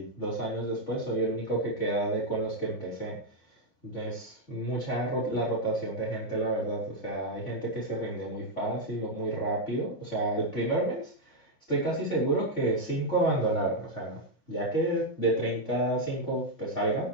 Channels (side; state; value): both; normal; correlation 0.01